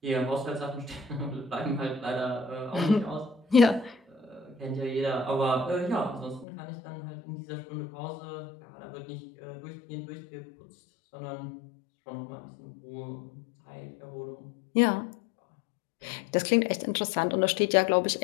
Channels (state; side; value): drops out; right; at 6.5 s